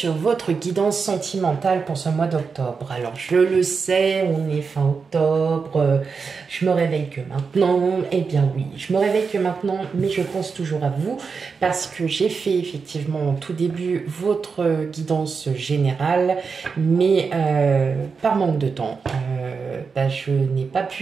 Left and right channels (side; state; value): left; quieter; 5.2 dB